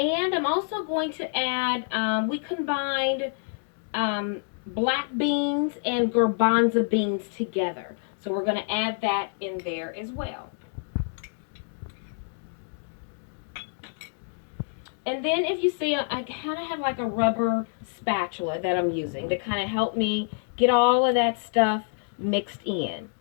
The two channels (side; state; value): right; silent; digital silence